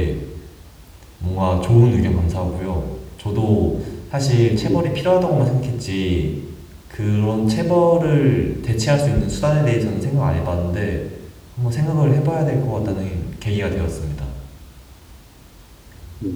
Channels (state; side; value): identical; both; correlation 1.00